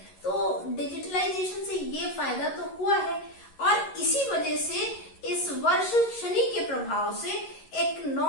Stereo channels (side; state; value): right; late; 11 ms